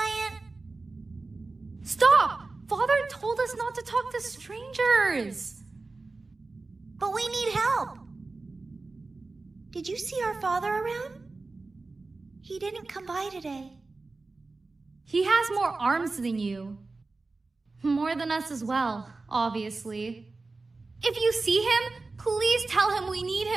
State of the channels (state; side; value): quieter; left; 3.6 dB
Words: Stop! Father told us not to talk to strangers. But we need help. Did you see our father around? He didn't come by today. He has more arms than you. More than us as well, obviously. If you see him, please tell him we need